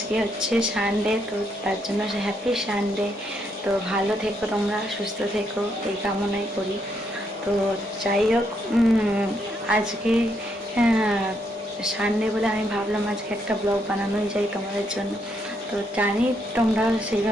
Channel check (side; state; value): both; normal; correlation 0.76